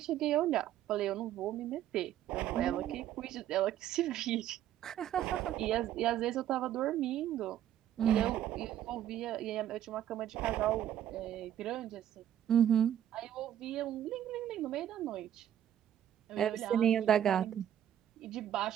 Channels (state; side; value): quieter; left; 11.1 dB